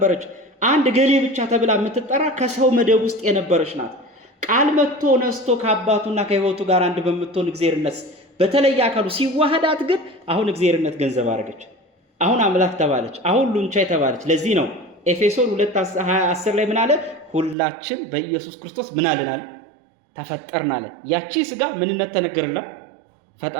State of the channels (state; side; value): drops out; left; at 17.6 s